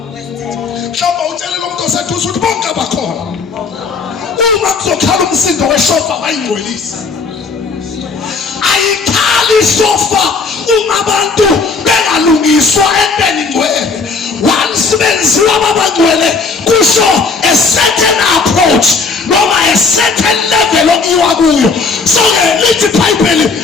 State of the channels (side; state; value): right; quieter; 4.4 dB